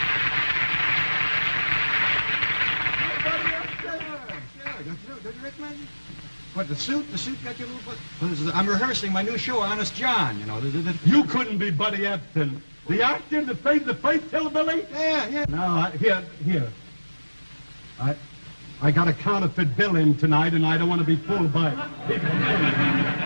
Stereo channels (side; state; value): both; inverted; correlation -1.00